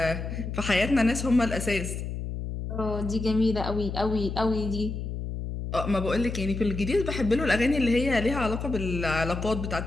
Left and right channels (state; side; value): noise; left; hum, 5 dB below the sound